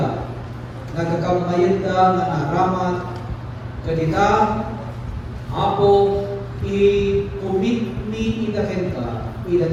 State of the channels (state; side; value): identical; both; correlation 1.00